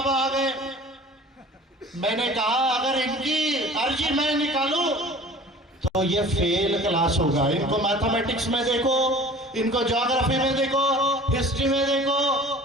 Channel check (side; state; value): both; normal; correlation 0.44